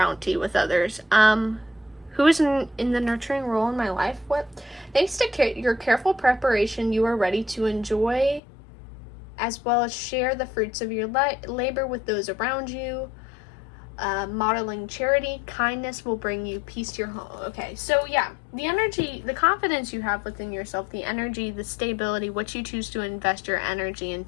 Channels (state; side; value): drops out; right; at 8.4 s